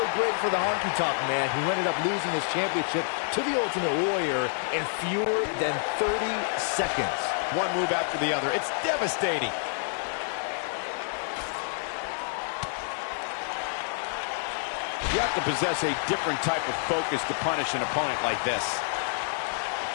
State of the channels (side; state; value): right; silent; digital silence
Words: great for the honky-tonk man, who ended up losing his championship to the Ultimate Warrior in fewer than 30 seconds. One move after the other. It's devastating. You have to possess a different type of focus to punish an opponent like this.